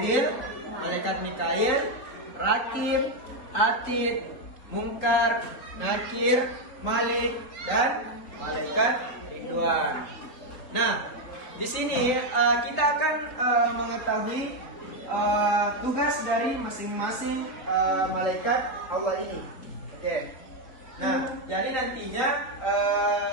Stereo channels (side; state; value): right; late; 3.8 ms